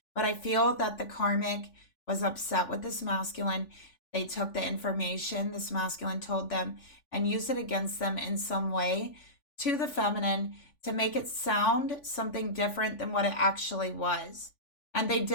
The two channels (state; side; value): late; right; 3.5 ms